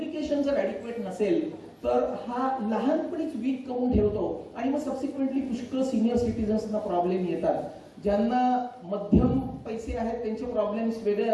जर ऍडिक्वेट नसेल तर हा लहानपणीच वीक करून ठेवतो आणि मग सबसिक्वेंटली पुष्कळ सिनियर सिटीजन्सना प्रॉब्लेम येतात. ज्यांना मध्यम पैसे आहेत त्यांचे प्रॉब्लेम्स वेगळे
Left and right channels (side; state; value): both; identical; correlation 1.00